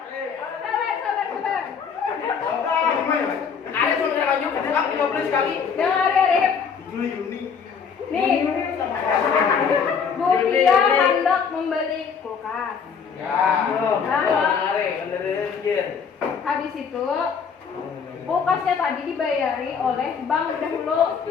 Nih, Budia hendak membeli kulkas. Habis itu kulkasnya tadi dibayari oleh bank dahulu.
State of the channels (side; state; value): right; quieter; 6.4 dB